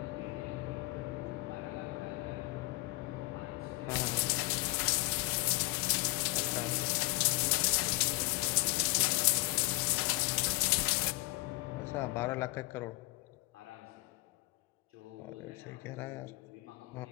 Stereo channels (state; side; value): quieter; right; 24.3 dB